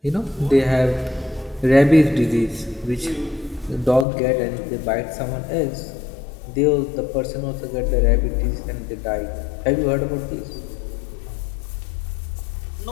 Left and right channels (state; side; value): drops out; right; at 4.0 s